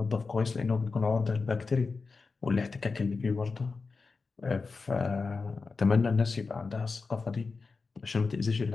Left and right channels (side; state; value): right; quieter; 4.4 dB